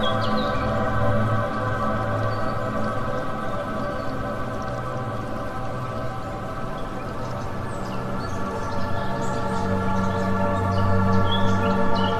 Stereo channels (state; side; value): identical; both; correlation 1.00